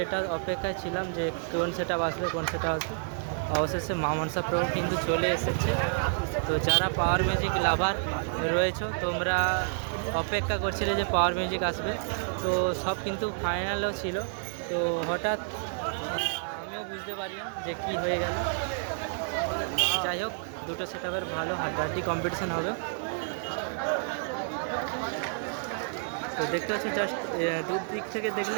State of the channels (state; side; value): silent; left; 58 dB below the other